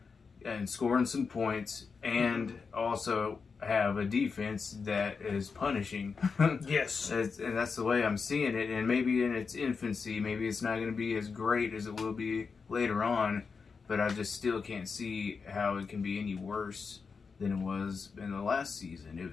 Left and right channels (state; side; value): quieter; right; 5.2 dB